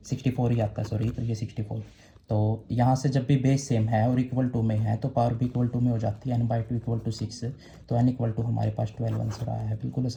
64 ही आता है, सॉरी, तो ये 64। तो यहाँ से जब भी बेस सेम है और इक्वल टू में है तो पावर भी इक्वल टू में हो जाती है, n/2 इक्वल टू 6। तो n इक्वल टू हमारे पास 12 आंसर आया है। बिल्कुल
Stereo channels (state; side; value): identical; both; correlation 1.00